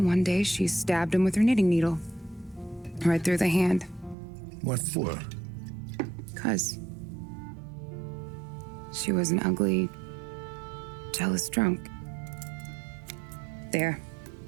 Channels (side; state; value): left; drops out; at 4.2 s